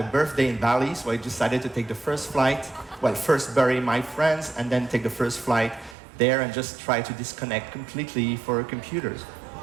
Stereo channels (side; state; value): left; drops out; at 6.0 s